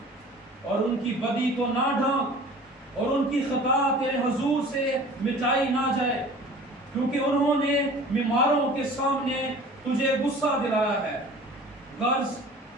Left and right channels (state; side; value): normal; both; correlation 0.44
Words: اور ان کی بدی کو نہ ڈھانک، اور ان کی خطا تیرے حضور سے مٹائی نہ جائے، کیونکہ انہوں نے بیماروں کے سامنے تجھے غصہ دلایا ہے۔ غرض